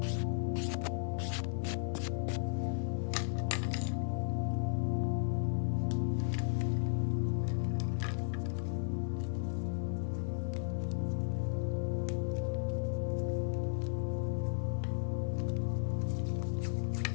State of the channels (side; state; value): right; silent; 54 dB below the other